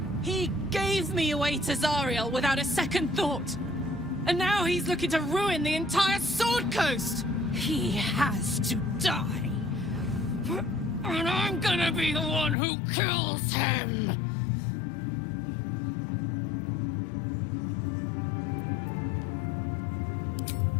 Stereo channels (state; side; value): drops out; right; at 12.6 s